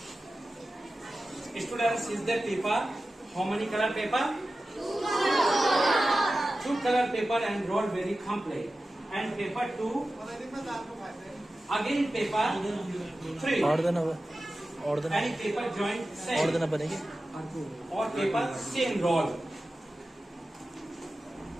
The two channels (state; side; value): normal; both; correlation 0.94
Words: Students, is the paper? How many color paper? Two color paper and roll very complete. And paper 2. Again paper 3. And paper joint same. Or paper same roll.